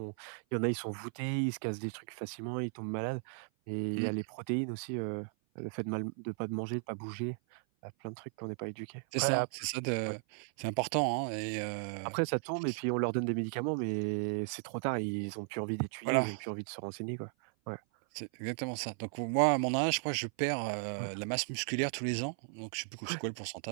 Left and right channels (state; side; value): silent; left; 54 dB below the other